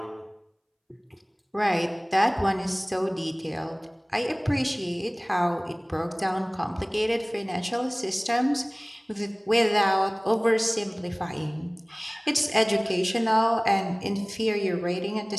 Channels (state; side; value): identical; both; correlation 1.00